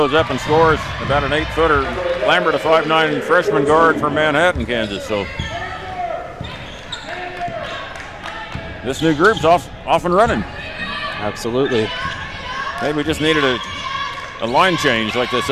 up and scores about an 8-footer. Lambert, a 5'9" freshman guard from Manhattan, Kansas. So this new group's off and running. Absolutely. Maybe we just needed a line change, like they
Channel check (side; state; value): both; identical; correlation 1.00